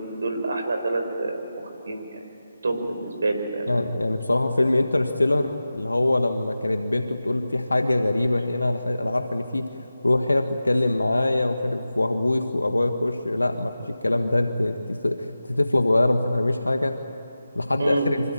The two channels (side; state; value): both; inverted; correlation -0.94